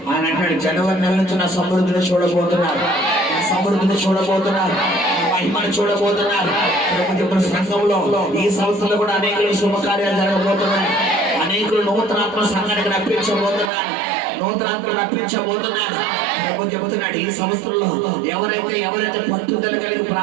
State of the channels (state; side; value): drops out; left; at 13.7 s